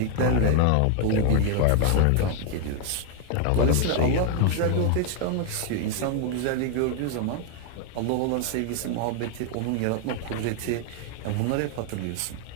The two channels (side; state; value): both; different; correlation 0.00